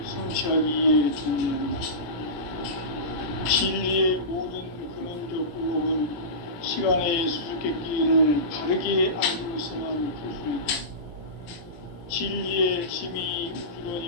성취하기 위해 존재한다. 진리의 모든 근원적 의혹은 시간의 수수께끼를 바르게 알고서만 풀 수 있다. 진리의 핵심이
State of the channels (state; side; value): late; right; 17 ms